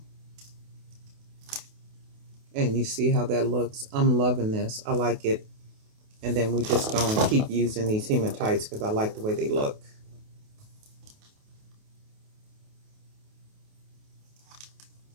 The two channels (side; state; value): left; late; 28 ms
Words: And you see how that looks? I'm loving this. I like it. And then we just gonna keep using these hematites because I like the way they look.